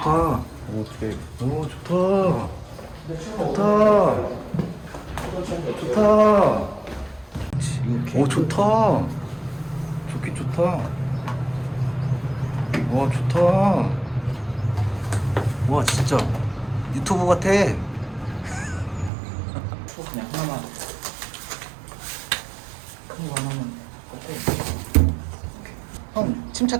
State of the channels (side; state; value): left; drops out; at 19.1 s